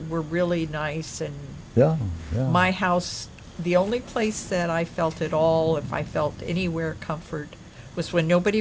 were really nice, and yeah, yeah. my house, the only place that I felt at all, if I felt anywhere comfort, was when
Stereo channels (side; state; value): both; identical; correlation 1.00